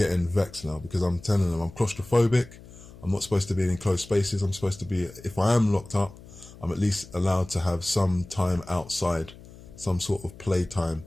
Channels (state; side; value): noise; left; hum, 19 dB below the sound